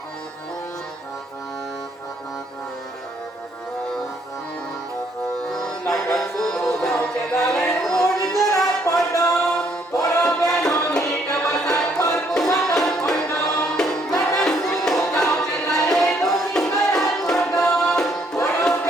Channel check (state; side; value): normal; both; correlation 0.68